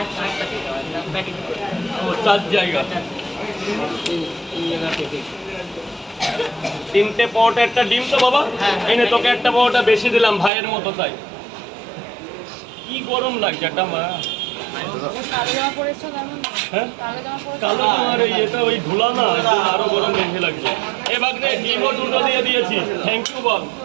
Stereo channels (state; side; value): drops out; left; at 10.5 s